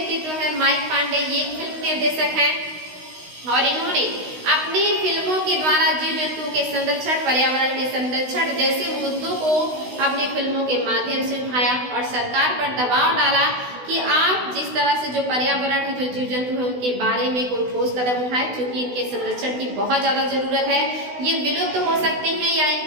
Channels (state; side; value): late; left; 16 ms